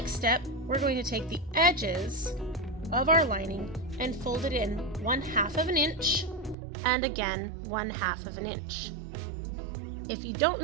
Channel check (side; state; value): left; drops out; at 6.6 s